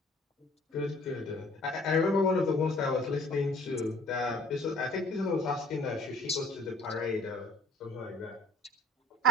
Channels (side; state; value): both; normal; correlation 0.55